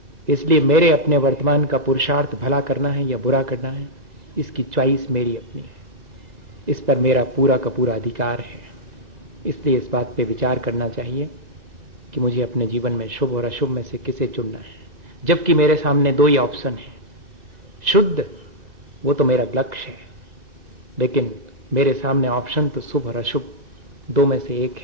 इसलिए मेरे अपने वर्तमान का पुरुषार्थ भला करना है या बुरा करना है, इसकी चॉइस मेरी अपनी है, इस पर मेरा पूरा का पूरा अधिकार है। इसलिए इस बात पे विचार करना चाहिए कि मुझे अपने जीवन में शुभ और अशुभ में से किसे चुनना है, जबकि मेरे सामने दो ही ऑप्शन है। शुद्ध वो तो मेरा लक्ष्य है, लेकिन मेरे सामने ऑप्शन तो शुभ और अशुभ दो में से एक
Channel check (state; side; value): late; left; 2.0 ms